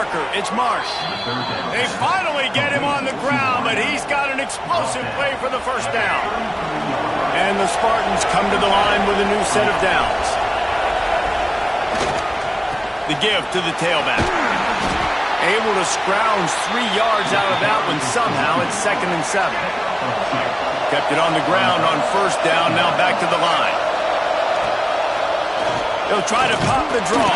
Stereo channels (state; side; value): identical; both; correlation 1.00